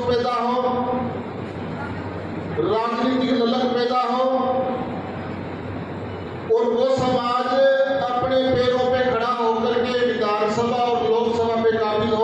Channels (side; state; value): both; identical; correlation 1.00